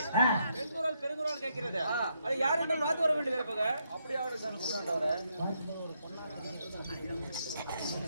பெருங்குரல் பெருங்குரல் கேட்கிறது. அது யார் என்று பார்த்து வர வேண்டும் இருப்பக. அப்படியே அவரு சொன்னாண்டவரே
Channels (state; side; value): inverted; both; correlation -0.77